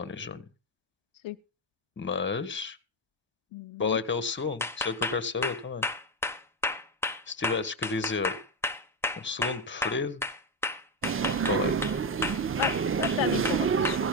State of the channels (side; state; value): both; normal; correlation 0.08